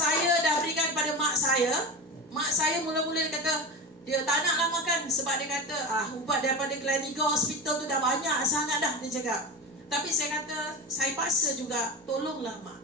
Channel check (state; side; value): normal; both; correlation 0.25